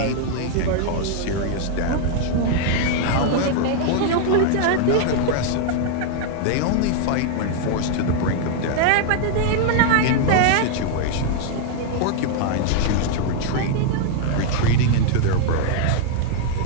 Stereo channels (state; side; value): different; both; correlation 0.00